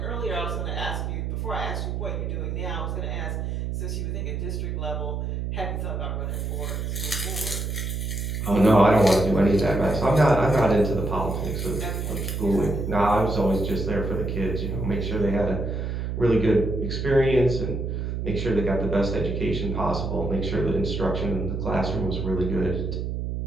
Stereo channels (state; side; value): noise; right; hum, 3 dB below the sound